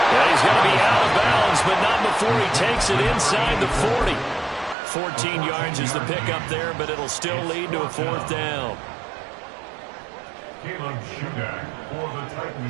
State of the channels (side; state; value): left; drops out; at 4.8 s